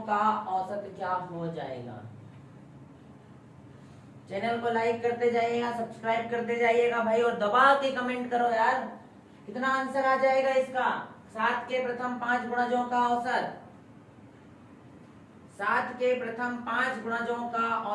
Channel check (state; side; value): identical; both; correlation 1.00